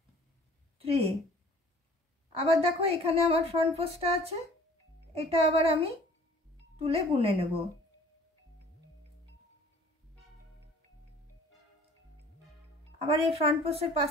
3। আবার দেখো এখানে আমার ফ্রন্ট পোস্টটা আছে, এটা আবার আমি তুলে বুনে নেব। আবার এই ফ্রন্ট পোস্টের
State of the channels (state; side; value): normal; both; correlation 0.50